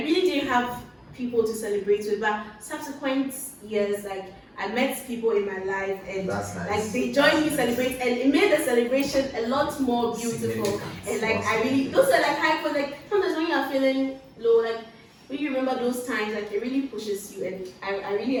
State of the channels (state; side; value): identical; both; correlation 1.00